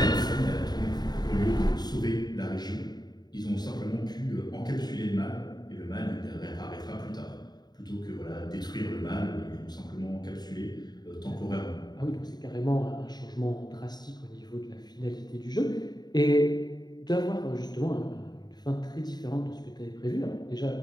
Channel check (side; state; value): right; late; 0.20 ms